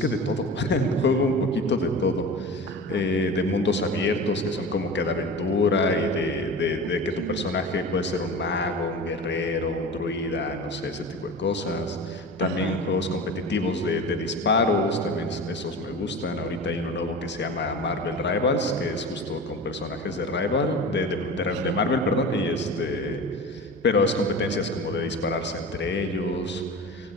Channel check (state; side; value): normal; both; correlation 0.33